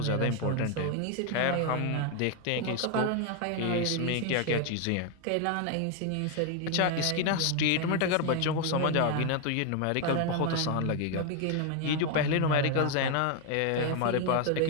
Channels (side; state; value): both; different; correlation 0.01